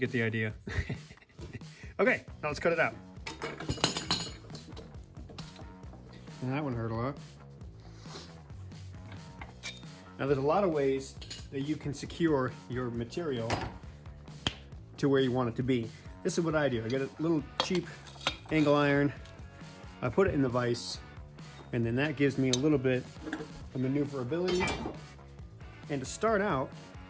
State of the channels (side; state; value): both; identical; correlation 1.00